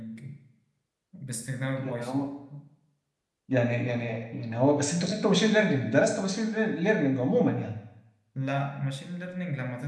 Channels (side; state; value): both; identical; correlation 1.00